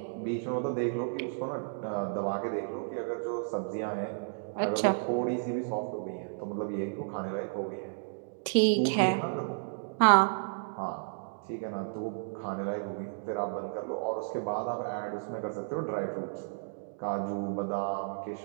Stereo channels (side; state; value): left; silent; digital silence